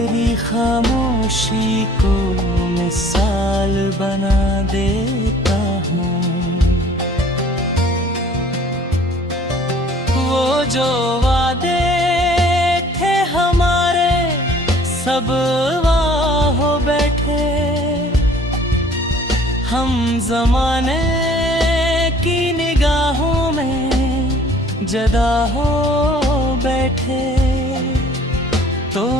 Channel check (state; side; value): normal; both; correlation 0.53